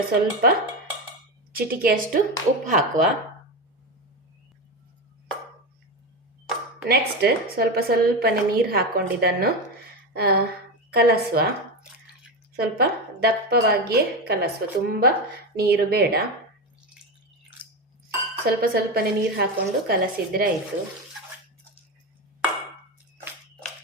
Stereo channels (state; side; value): normal; both; correlation 0.16